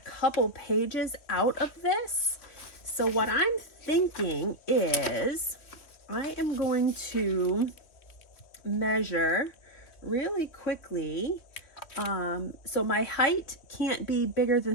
pages out of this. So what I'm thinking is I am going to measure really quickly. So my height can't be bigger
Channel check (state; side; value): late; right; 3.1 ms